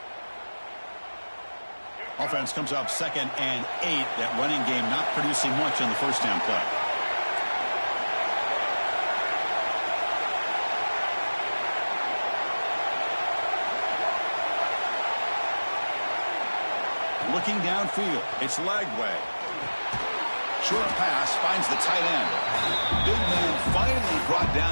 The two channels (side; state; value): both; inverted; correlation -1.00